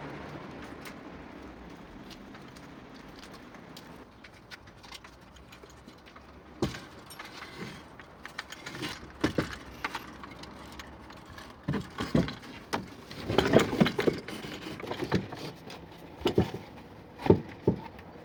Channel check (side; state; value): both; identical; correlation 1.00